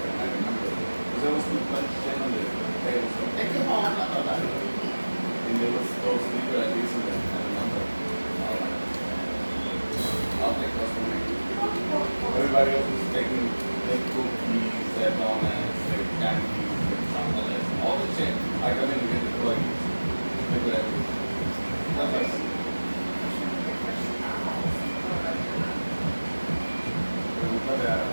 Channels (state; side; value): inverted; both; correlation -1.00